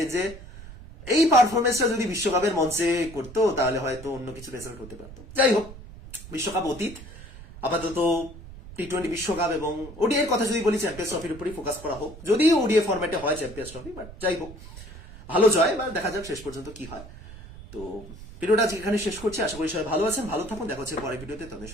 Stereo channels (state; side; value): noise; right; rumble, 16 dB below the sound